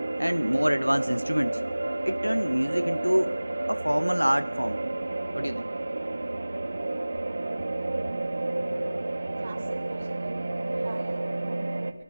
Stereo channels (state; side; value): inverted; both; correlation -0.99